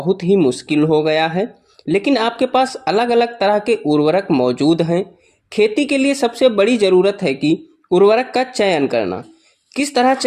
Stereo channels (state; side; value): identical; both; correlation 1.00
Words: ही मुश्किल हो गया है। लेकिन आपके पास अलग अलग तरह के उर्वरक मौजूद हैं। खेती के लिए सबसे बड़ी ज़रूरत है कि उर्वरक का चयन करना। किस तरह